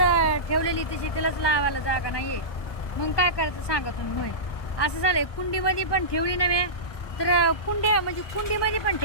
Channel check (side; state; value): right; late; 1.2 ms